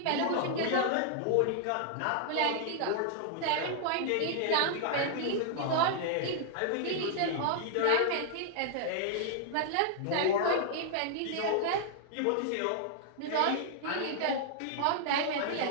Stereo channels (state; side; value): different; both; correlation -0.01